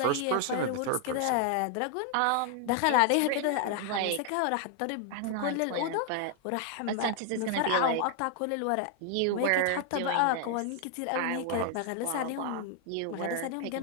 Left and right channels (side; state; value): both; different; correlation 0.00